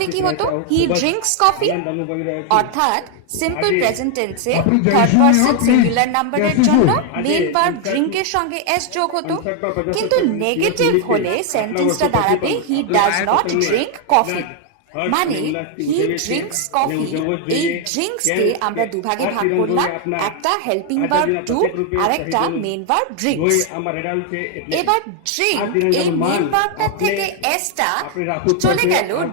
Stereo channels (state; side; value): different; both; correlation 0.01